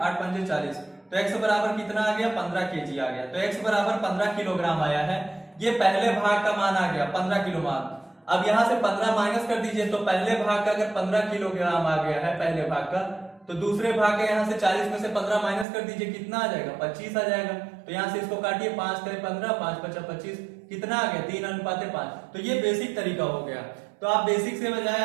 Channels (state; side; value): drops out; left; at 15.7 s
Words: 8 पंजे 40, तो x बराबर कितना आ गया 15 केजी आ गया, तो x बराबर 15 किलोग्राम आया है। ये पहले भाग का मान आ गया 15 किलो मान। अब यहां से 15 माइनस कर दीजिए, तो पहले भाग का अगर 15 किलोग्राम आ गया है पहले भाग का, तो दूसरे भाग का यहां से 40 में से 15 माइनस कर दीजिए, कितना आ जाएगा 25 आ जाएगा, तो यहां से इसको काटिए, 5 करे 15 5 5 25, कितना आ गया 3:5। तो ये बेसिक तरीका हो गया। तो आप बेसिक से बजाय